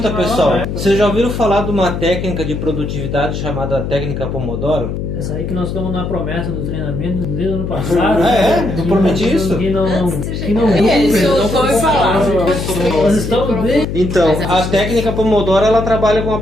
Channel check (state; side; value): noise; left; hum, 4 dB below the sound